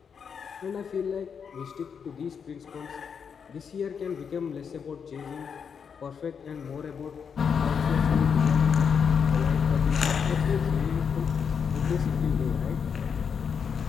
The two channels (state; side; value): quieter; right; 6.7 dB